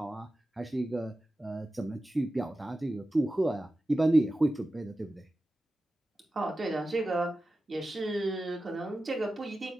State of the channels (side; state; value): both; normal; correlation 0.94